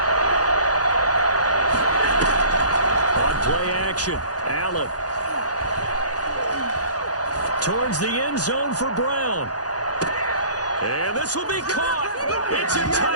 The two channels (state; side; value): late; right; 0.68 ms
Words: On play action, Allen. Towards the end zone for Brown. And this will be caught. It's a